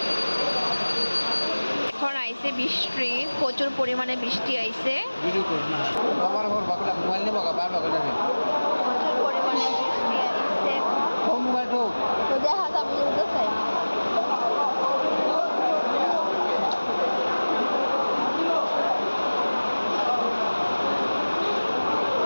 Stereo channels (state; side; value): inverted; both; correlation -1.00